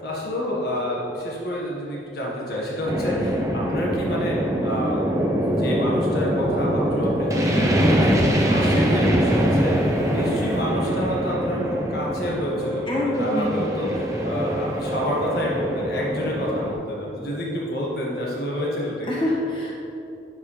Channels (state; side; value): normal; both; correlation 0.64